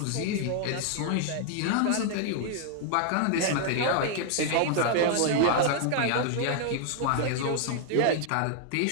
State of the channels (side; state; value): both; different; correlation 0.00